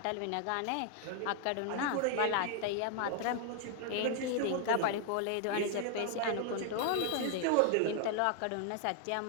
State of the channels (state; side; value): different; both; correlation 0.00